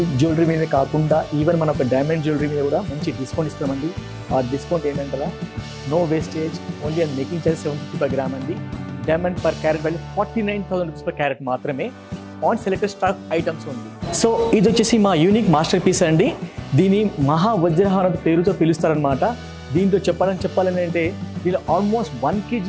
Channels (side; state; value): both; identical; correlation 1.00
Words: జ్యువెలరీ మీద కాకుండా ఈవెన్ మన ఒక డైమండ్ జ్యువెలరీ మీద కూడా మంచి డిస్కౌంట్ ఇస్తామండి. ఆ డిస్కౌంట్ ఏంటంటారా, no wastage, only and making charge 750 per gram అండి. Diamond per carat value 49,000 rupees per carat మాత్రమే ఆన్ సెలెక్టెడ్ స్టాక్ ఐటమ్స్ ఉంది. సో ఇది వచ్చేసి మా యూనిక్ మాస్టర్ పీస్ అండి. దీని మహావజ్రహారం పేరుతో పిలుస్తారనమాట. దీంట్లో చెప్పాలని అంటే దీనిలో almost 1 kg